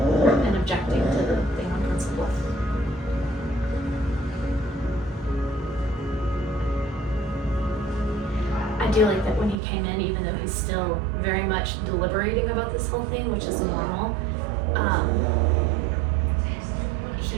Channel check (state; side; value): drops out; left; at 9.6 s